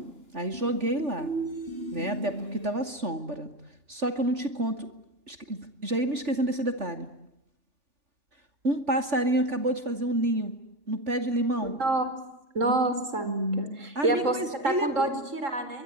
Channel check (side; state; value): left; late; 3.4 ms